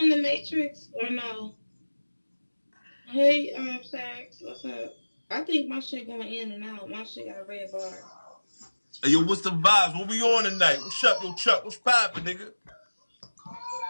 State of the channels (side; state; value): both; inverted; correlation -1.00